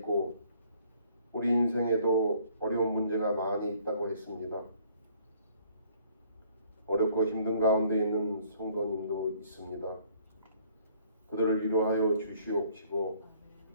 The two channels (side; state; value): both; inverted; correlation -0.60